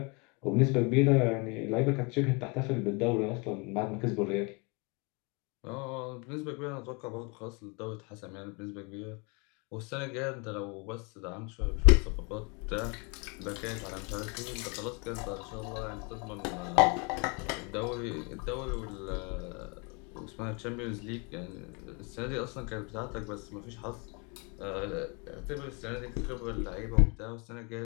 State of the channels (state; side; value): quieter; right; 30.4 dB